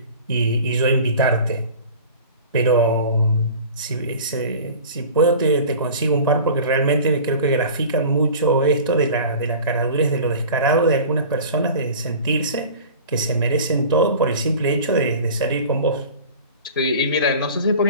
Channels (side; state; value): both; inverted; correlation -0.40